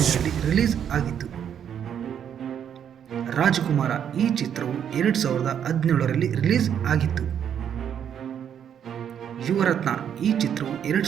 ರಿಲೀಸ್ ಆಗಿತ್ತು. ರಾಜಕುಮಾರ ಈ ಚಿತ್ರವು 2017ರಲ್ಲಿ ರಿಲೀಸ್ ಆಗಿತ್ತು. ಯುವರತ್ನ ಈ ಚಿತ್ರವು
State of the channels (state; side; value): quieter; left; 8.8 dB